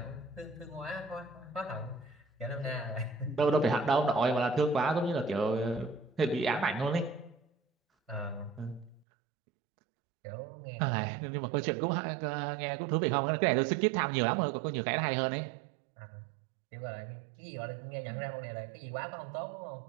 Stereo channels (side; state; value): left; drops out; at 9.1 s